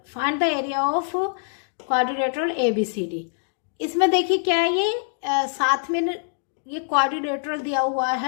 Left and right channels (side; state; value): right; silent; digital silence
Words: find the area of quadrilateral ABCD। इसमें देखिए क्या है, ये साथ में ये क्वाड्रिलेटरल दिया हुआ